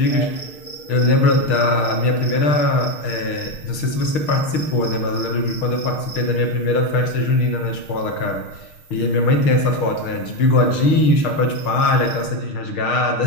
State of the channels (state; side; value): late; right; 6.5 ms